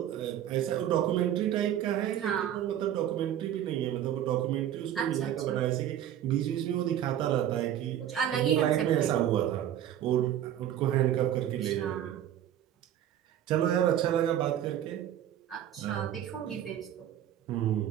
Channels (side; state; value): left; quieter; 11.1 dB